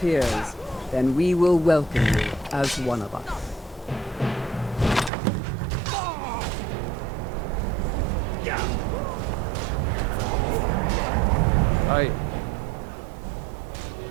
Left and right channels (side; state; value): left; drops out; at 5.1 s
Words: then we will welcome you as one of us.